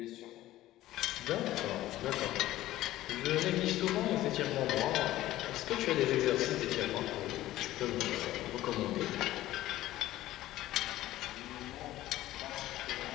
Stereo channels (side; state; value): right; quieter; 15.2 dB